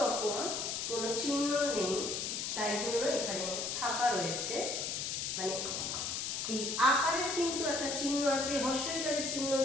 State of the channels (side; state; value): left; noise; hiss, 2 dB below the sound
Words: রকম কোনো চিহ্ন নেই, তাই জন্য এখানে ফাঁকা রয়েছে। মানে এই আকারের কিন্তু একটা চিহ্ন আছে, হর্ষইকারের চিহ্ন,